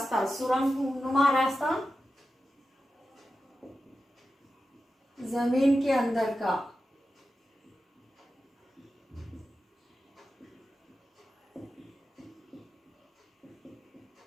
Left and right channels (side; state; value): both; normal; correlation 0.92